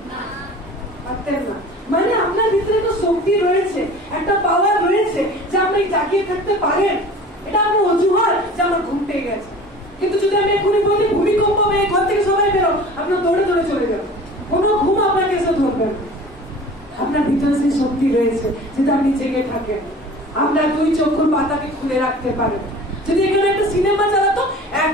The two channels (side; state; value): both; normal; correlation 0.42